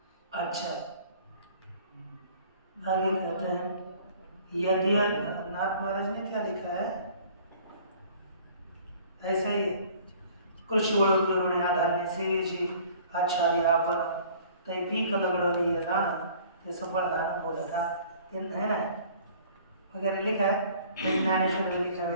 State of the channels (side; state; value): both; inverted; correlation -0.52